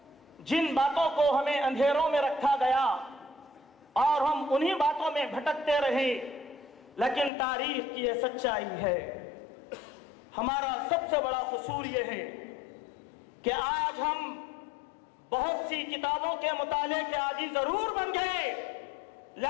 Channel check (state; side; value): drops out; right; at 7.3 s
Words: جن باتوں کو ہمیں اندھیروں میں رکھا گیا اور ہم انہی باتوں میں بھٹکتے رہے، لیکن تاریخ کی یہ سچائی ہے۔ ہمارا سب سے بڑا قصور یہ ہے کہ آج ہم بہت سی کتابوں کے مطالعے کے عادی ضرور بن گئے،